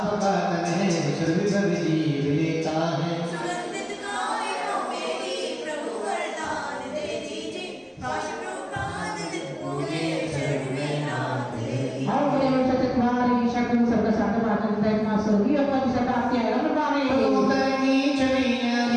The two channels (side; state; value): both; identical; correlation 1.00